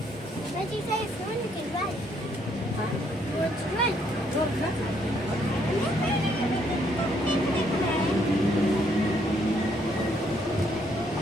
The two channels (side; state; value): both; normal; correlation 0.70